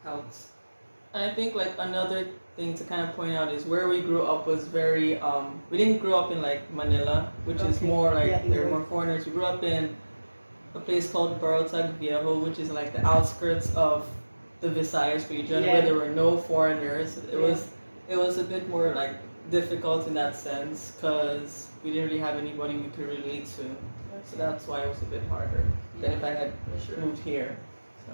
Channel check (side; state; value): both; inverted; correlation -1.00